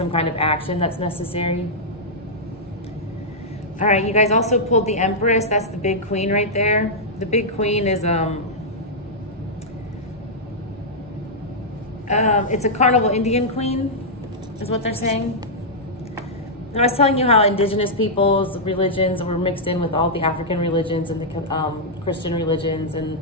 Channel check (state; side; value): normal; both; correlation -0.09